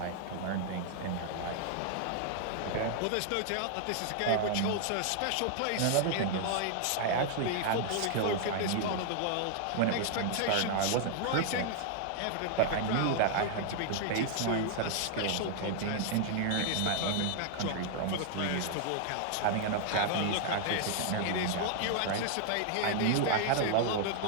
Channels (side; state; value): both; different; correlation 0.00